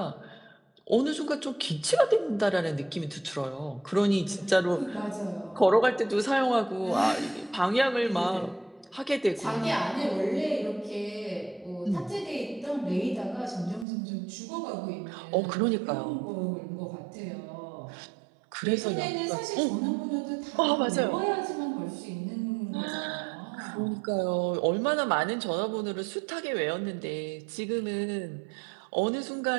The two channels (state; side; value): drops out; left; at 13.9 s